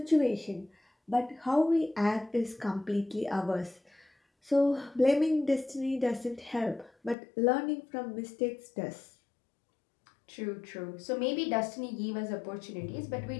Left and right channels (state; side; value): drops out; right; at 7.2 s